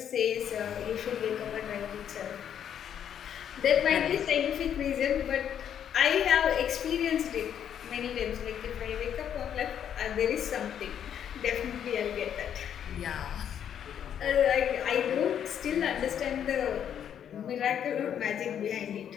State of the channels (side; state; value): right; quieter; 9.2 dB